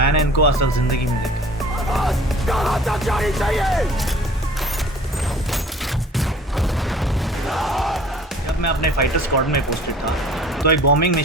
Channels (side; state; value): both; normal; correlation 0.49